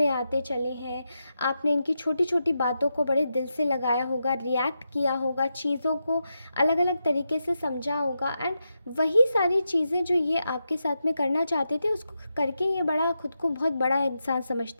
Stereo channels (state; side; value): inverted; both; correlation -0.87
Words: आते चले हैं, आपने इनकी छोटी छोटी बातों को बड़े दिल से लगाया होगा, रिएक्ट किया होगा, चीज़ों को अलग अलग तरीके से समझा होगा, एंड वही सारी चीज़ें जो ये आपके साथ में करना चाहते थे उसको करके ये बड़ा खुद को बहुत बड़ा इंसान